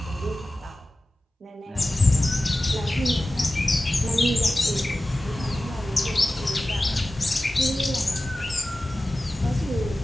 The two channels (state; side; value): normal; both; correlation 0.96